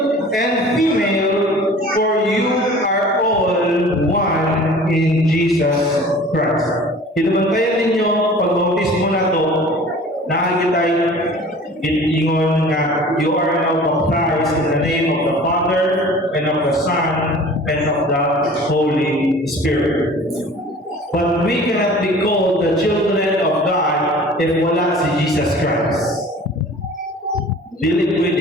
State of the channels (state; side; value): normal; both; correlation 0.44